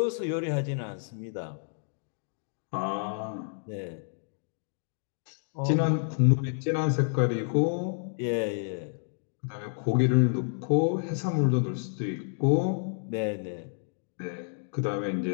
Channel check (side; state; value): right; silent; digital silence